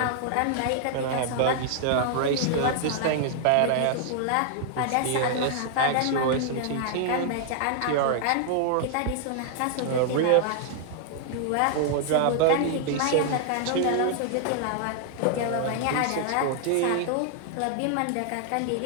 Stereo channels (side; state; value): both; different; correlation 0.00